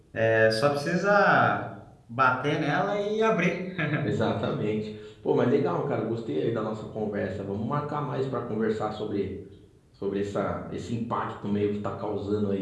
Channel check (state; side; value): identical; both; correlation 1.00